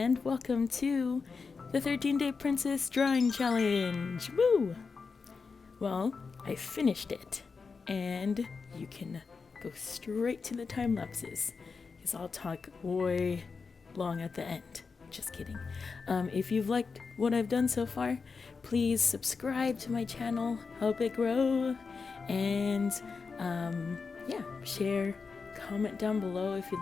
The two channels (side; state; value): right; quieter; 4.9 dB